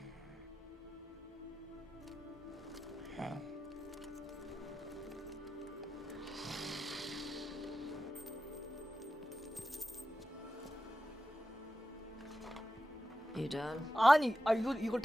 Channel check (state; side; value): normal; both; correlation 0.91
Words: Wow. You done? 아니, 이걸